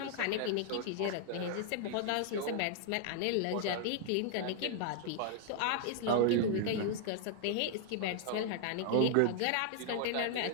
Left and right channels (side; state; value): both; different; correlation 0.00